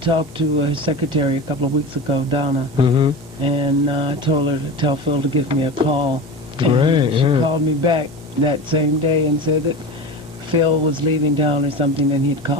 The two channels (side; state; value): both; normal; correlation 0.28